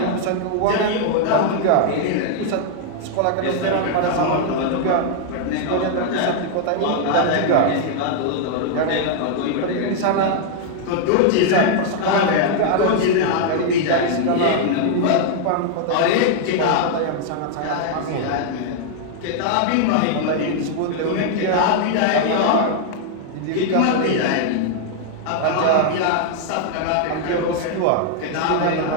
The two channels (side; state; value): both; different; correlation 0.00